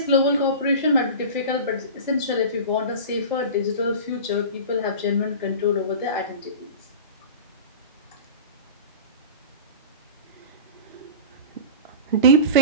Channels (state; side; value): inverted; both; correlation -0.32